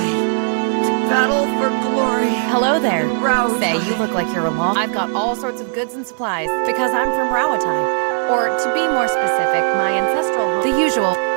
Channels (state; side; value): silent; left; 67 dB below the other